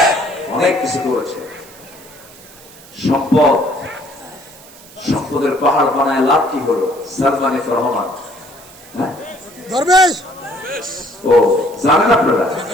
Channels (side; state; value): right; noise; hiss, 21 dB below the sound